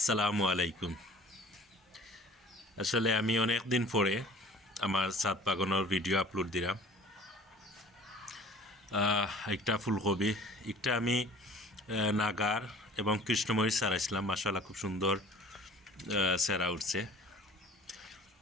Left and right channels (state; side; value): normal; both; correlation 0.48